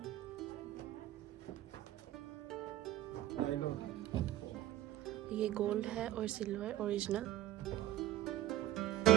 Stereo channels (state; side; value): quieter; left; 13.9 dB